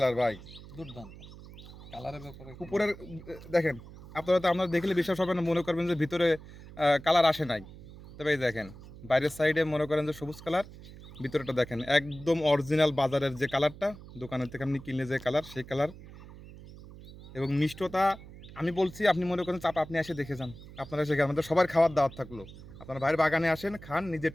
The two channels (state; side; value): noise; right; hum, 17 dB below the sound